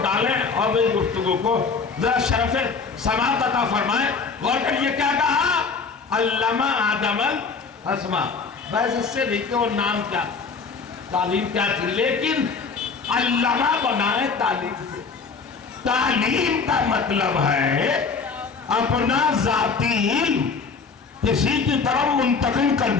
ڈالیں اور میری گفتگو کو ذرا شرف سماعت عطا فرمائیں۔ غور کریے کیا کہا؟ علم آدم الاسماء، بس اس سے نہیں کہ وہ نام کیا، تعلیم کیا تھی، لیکن علمہ بنائے تعلیم سے۔ تعلیم کا مطلب ہے اپنا ذاتی علم کسی کی طرف منتقل کر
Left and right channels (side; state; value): right; quieter; 5.0 dB